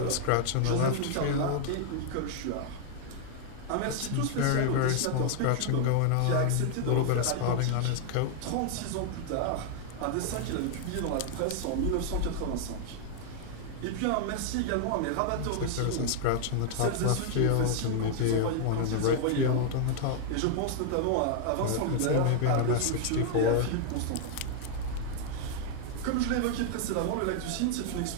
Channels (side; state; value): both; different; correlation 0.00